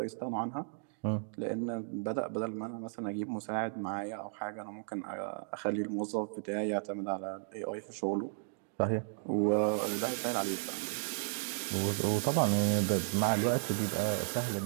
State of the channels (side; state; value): left; silent; digital silence